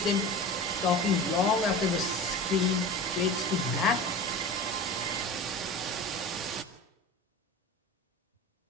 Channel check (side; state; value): both; normal; correlation 0.33